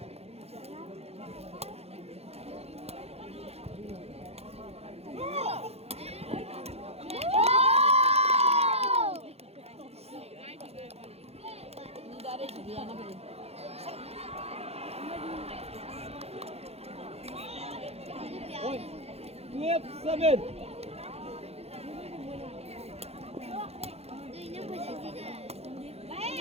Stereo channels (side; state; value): left; late; 0.30 ms